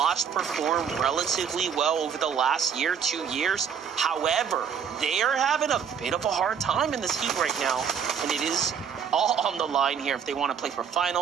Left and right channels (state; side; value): quieter; left; 7.4 dB